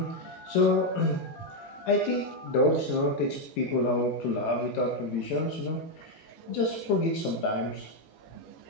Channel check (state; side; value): late; right; 18 ms